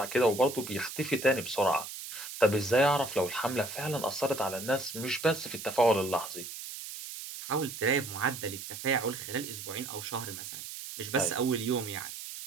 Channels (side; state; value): right; noise; hiss, 9 dB below the sound